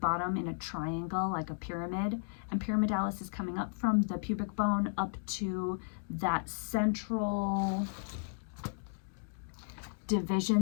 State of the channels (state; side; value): silent; right; digital silence